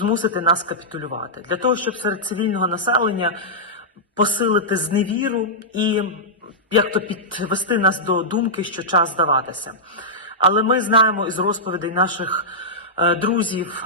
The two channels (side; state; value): both; normal; correlation -0.13